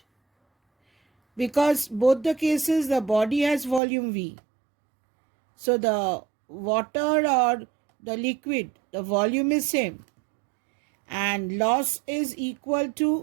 Because both the cases the body has volume V. So the water or the liquid, the volume is same. And loss is equal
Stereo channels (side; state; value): left; drops out; at 3.8 s